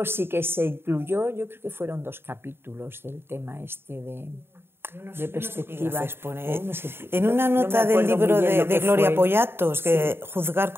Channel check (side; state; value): left; late; 0.11 ms